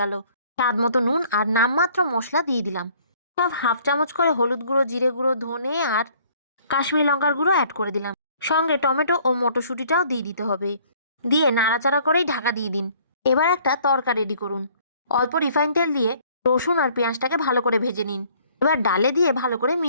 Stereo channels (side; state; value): both; inverted; correlation -0.58